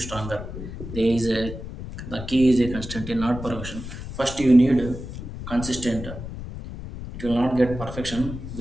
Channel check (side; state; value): left; noise; rumble, 9 dB below the sound